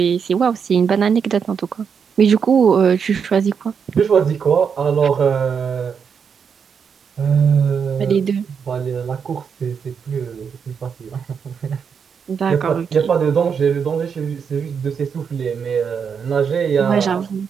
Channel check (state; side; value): quieter; left; 6.6 dB